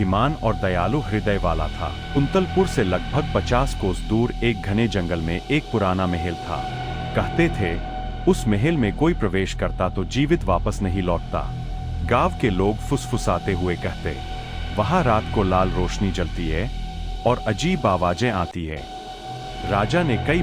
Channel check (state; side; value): identical; both; correlation 1.00